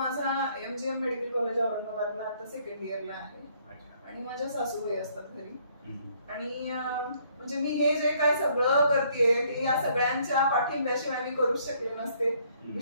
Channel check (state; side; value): inverted; both; correlation -0.65